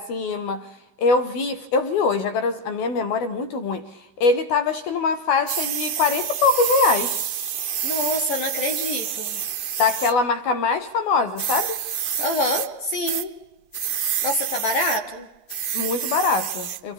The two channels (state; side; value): late; right; 12 ms